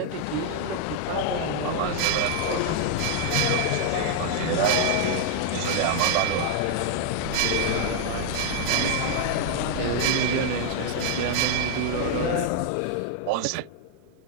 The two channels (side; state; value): both; different; correlation 0.00